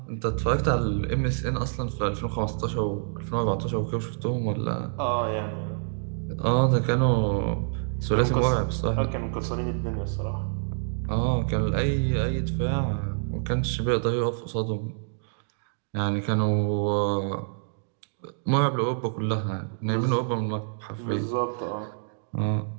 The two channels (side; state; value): left; silent; digital silence